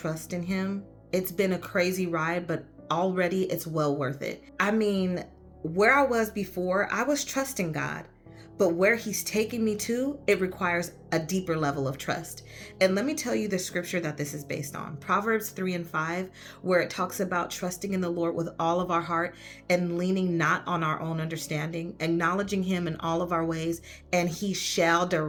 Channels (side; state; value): both; identical; correlation 1.00